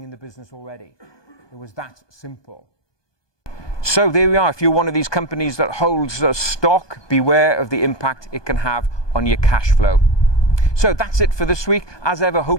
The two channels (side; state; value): right; late; 1.2 ms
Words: in the business already. It was that simple. So there we are. If you're one of these companies that holds stock, beware of the impact it can have on your cash flow. So that's it for this week. As ever,